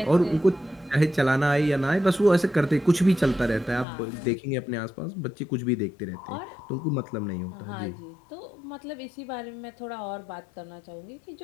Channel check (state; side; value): drops out; right; at 3.9 s